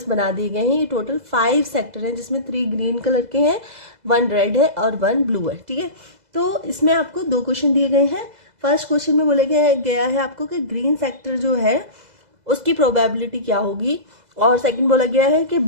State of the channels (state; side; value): late; left; 2.0 ms